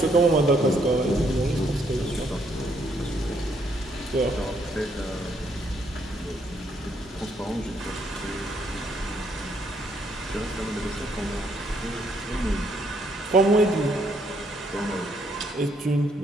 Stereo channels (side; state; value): both; normal; correlation 0.71